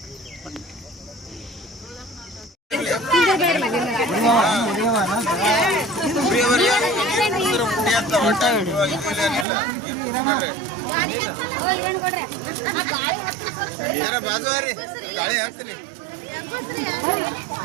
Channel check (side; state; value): left; drops out; at 9.5 s